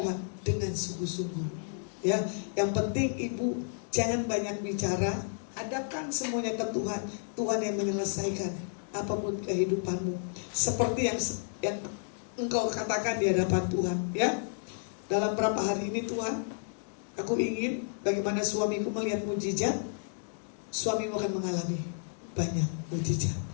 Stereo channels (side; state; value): right; silent; digital silence